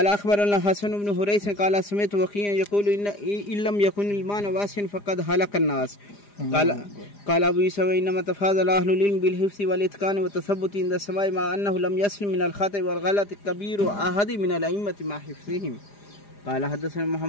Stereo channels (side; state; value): right; late; 4.9 ms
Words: أخبرنا حسن بن حريث قال سمعت وكيعا يقول إن لم يكن المعنى واسعا فقد هلك الناس. قال أبو يوسف إنما تفاضل أهل العلم بالحفظ والإتقان والتثبت عند السماع مع أنه لم يسلم من الخطأ والغلط كبير أحد من الأئمة مع حفظهم. قال حدثنا